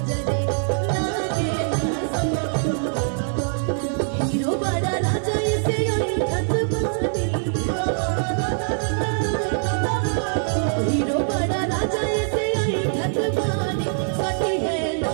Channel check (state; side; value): silent; left; 63 dB below the other